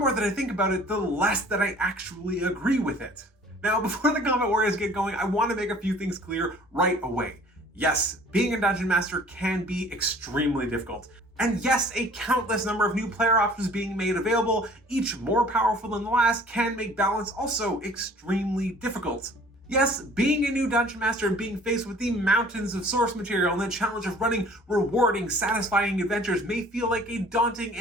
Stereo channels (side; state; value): both; normal; correlation 0.51